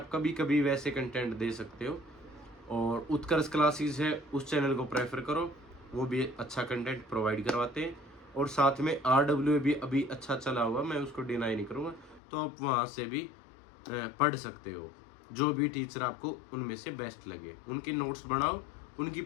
कभी कभी वैसे कंटेंट दे सकते हो। और उत्कर्ष क्लासेस है, उस चैनल को प्रेफर करो, वो भी अच्छा कंटेंट प्रोवाइड करवाते हैं। और साथ में RWA भी अभी अच्छा चला हुआ, मैं उसको डिनाई नहीं करूँगा, तो आप वहाँ से भी पढ़ सकते हो। जो भी टीचर आपको उनमें से बेस्ट लगे, उनके नोट्स बनाओ, उनकी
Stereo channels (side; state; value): right; drops out; at 12.2 s